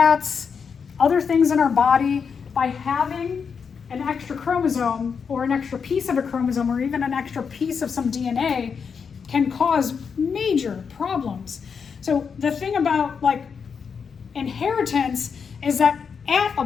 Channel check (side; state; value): right; quieter; 6.2 dB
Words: other things in our body. By having an extra chromosome or an extra piece of a chromosome or even an extra piece of some DNA can cause major problems. So the thing about like inheritance is that at a